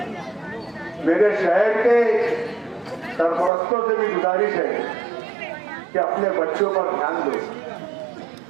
मेरे शहर के सरपरस्तों से भी गुजारिश है कि अपने बच्चों पर ध्यान दो,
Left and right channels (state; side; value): drops out; left; at 3.5 s